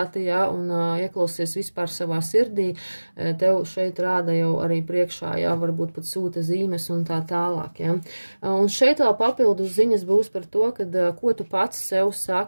ja, un ieklausies vispār savā sirdī, tev šeit rāda jau arī priekšā, ja, varbūt pat sūta zīmes un tā tālāk, ja. Un šeit vēl papildus ziņas būs par to, kad, ko tu pats sev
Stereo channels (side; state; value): both; inverted; correlation -1.00